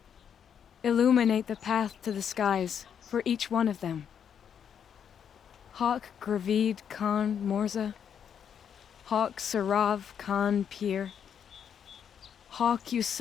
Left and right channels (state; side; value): quieter; right; 8.1 dB